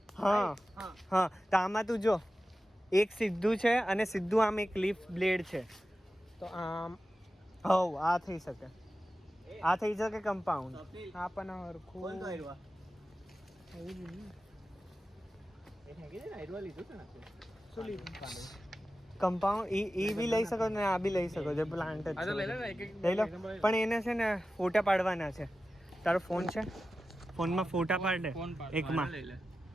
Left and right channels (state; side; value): normal; both; correlation 0.93